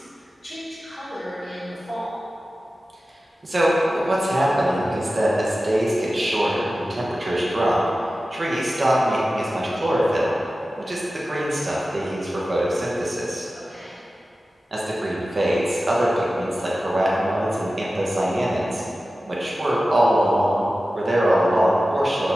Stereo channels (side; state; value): both; normal; correlation 0.95